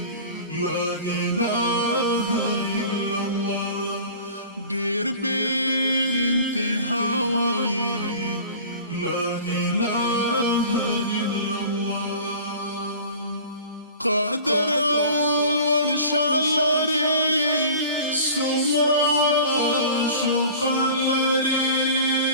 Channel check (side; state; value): both; inverted; correlation -0.41